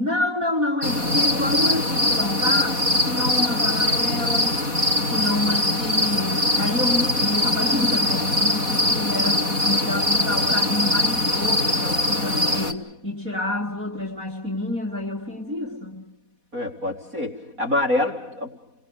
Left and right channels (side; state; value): left; late; 4.1 ms